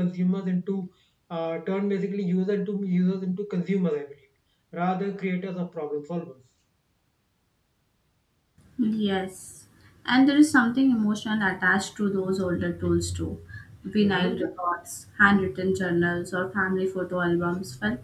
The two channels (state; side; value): identical; both; correlation 1.00